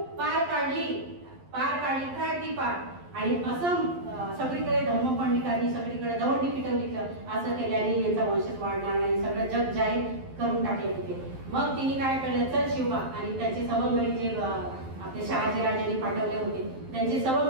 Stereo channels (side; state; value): left; late; 11 ms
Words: पार काढली काय ती पार. आणि असं सगळीकडे धर्मपंडितांनी सगळीकडे दवंडी पिटवली, असं केल्याने यांचा वंशच वाढणार नाही, सगळं जग जाहीर करून टाकले होते. मग तिने काय केलं, चल शिवबा आणि त्यांचे सवंगडी जे आपले शहाजीराजांनी पाठवले होते त्यांची